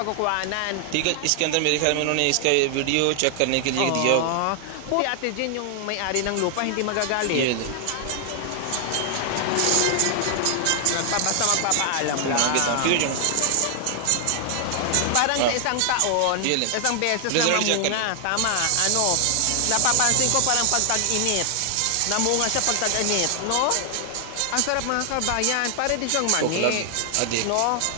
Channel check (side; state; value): both; different; correlation 0.00